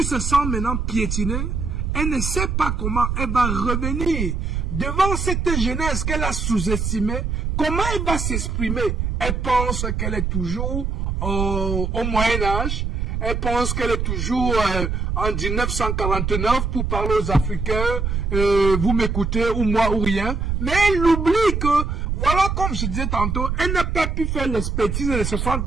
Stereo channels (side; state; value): right; noise; rumble, 1 dB below the sound